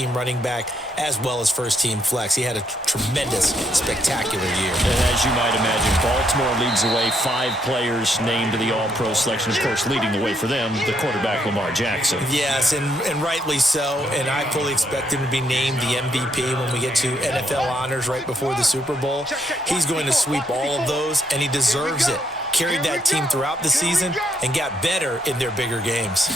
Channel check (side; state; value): both; normal; correlation 0.74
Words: running back as well as first-team flex. He had a tremendous, spectacular year. And as you might imagine, Baltimore leads the way. 5 players named to the All-Pro selection. Of course, leading the way for them, the quarterback Lamar Jackson. Yes, and rightly so. And I fully expect him to be named the MVP when we get to NFL honors right before the Super Bowl. He's going to sweep all of those, and he deserves it. Carried that team throughout the season and got better in their bigger games.